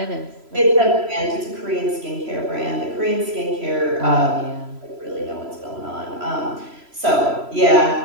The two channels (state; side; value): late; left; 3.0 ms